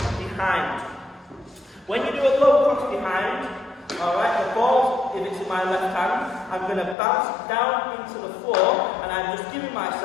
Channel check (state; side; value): drops out; right; at 7.0 s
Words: behind. When you do a low cross behind, alright, the ball, if it's in my left hand, I'm going to bounce down into the floor, and I'm just giving